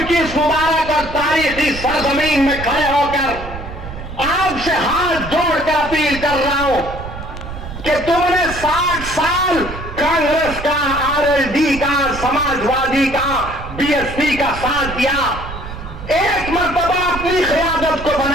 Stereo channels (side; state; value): right; noise; rumble, 10 dB below the sound